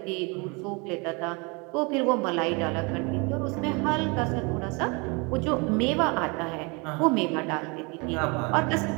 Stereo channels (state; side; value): quieter; left; 29.7 dB